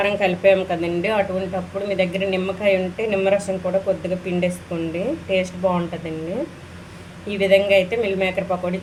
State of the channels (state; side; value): identical; both; correlation 1.00